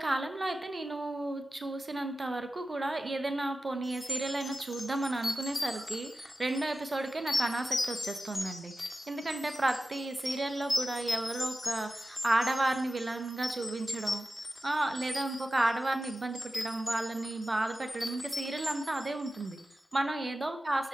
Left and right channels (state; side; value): normal; both; correlation 0.94